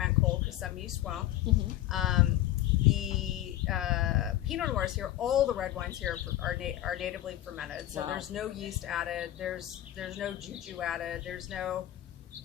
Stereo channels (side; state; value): right; quieter; 13.9 dB